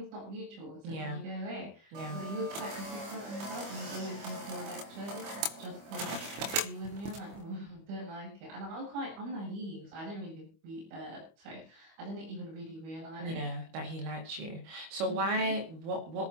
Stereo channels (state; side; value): late; left; 25 ms